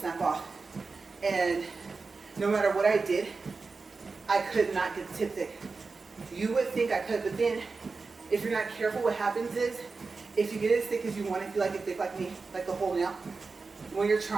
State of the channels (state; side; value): quieter; left; 4.2 dB